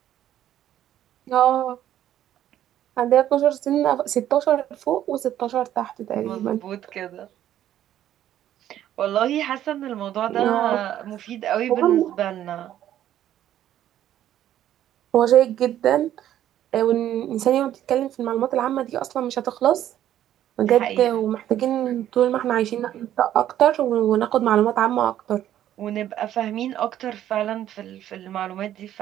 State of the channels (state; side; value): quieter; left; 11.8 dB